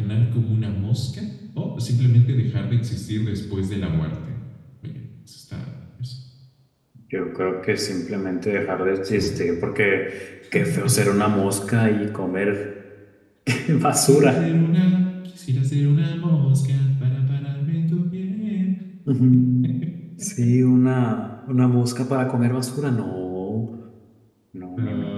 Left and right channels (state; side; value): identical; both; correlation 1.00